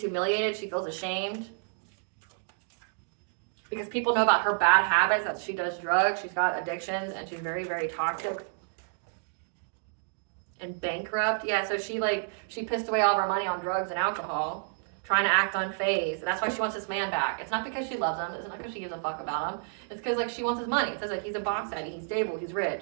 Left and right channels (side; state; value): left; silent; digital silence